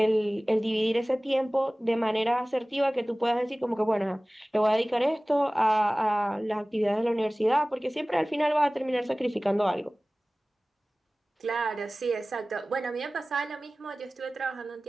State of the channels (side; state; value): both; normal; correlation 0.98